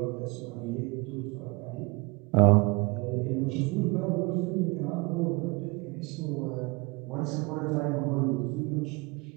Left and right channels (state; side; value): quieter; left; 26.9 dB